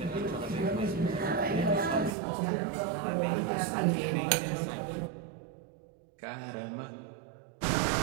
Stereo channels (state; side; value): drops out; left; at 2.1 s